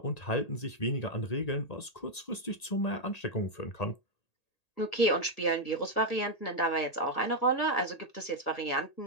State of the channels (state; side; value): late; right; 1.8 ms